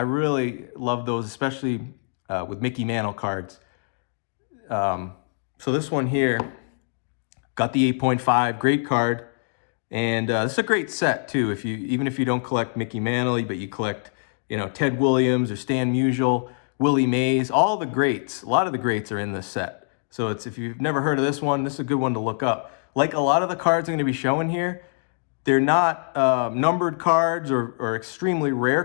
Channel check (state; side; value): silent; right; digital silence